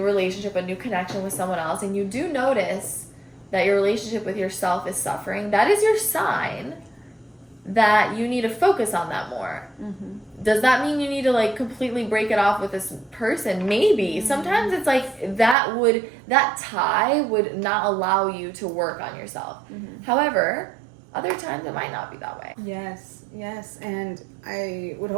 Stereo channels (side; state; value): left; drops out; at 15.6 s